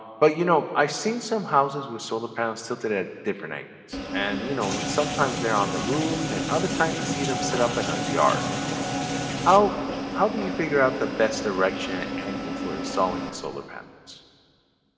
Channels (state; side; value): identical; both; correlation 1.00